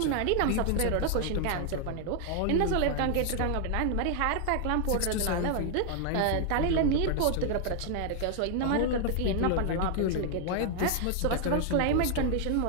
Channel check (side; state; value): both; different; correlation 0.00